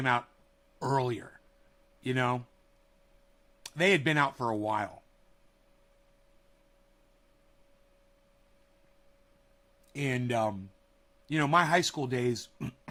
out earlier, you know? They had been out for a while. And, you know, my high school days,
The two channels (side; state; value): both; identical; correlation 1.00